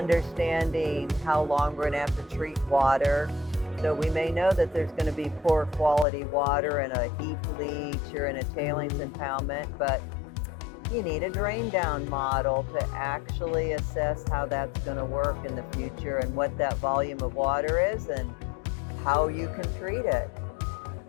how long we're going to have to treat water. So we may know that there's going to be poor quality water in a heap leach or in a tailings impoundment, but you need a drain down model to actually assess how that's going to work in the future and what that volume of water is and how you can treat it.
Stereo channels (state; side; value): drops out; right; at 6.1 s